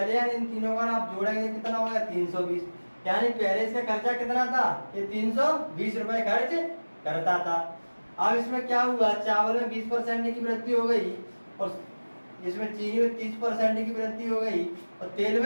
यानी इन तीनों का आप जोड़ेंगे कितना हो गया 320, यानी पहले इसका खर्चा कितना था ये 320 रुपए खर्च करता था। अब इसमें क्या हुआ चावल में 20% की वृद्धि हो गई, और इसमें चीनी में 30% की वृद्धि हो गई, और तेल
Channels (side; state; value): both; inverted; correlation -1.00